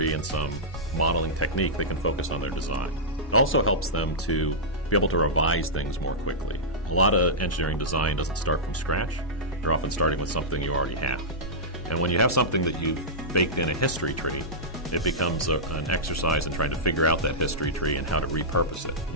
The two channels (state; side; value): normal; both; correlation -0.13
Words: and some modeling technique, they can focus on their design. It also helps them to be able to revise things more quickly. A lot of engineering design doesn't start from scratch. They're often starting with something you already have. And when you have something that you've baked in a history tree, it becomes an exercise in trying to figure out that history tree and how to repurpose it.